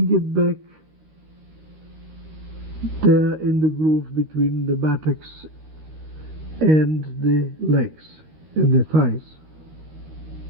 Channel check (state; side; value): late; left; 13 ms